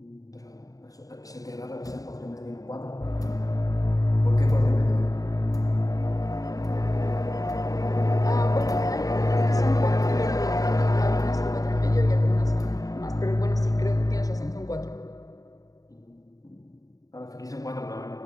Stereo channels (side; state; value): right; late; 0.17 ms